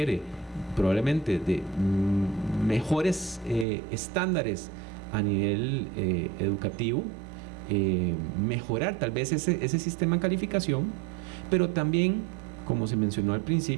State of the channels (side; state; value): left; drops out; at 3.7 s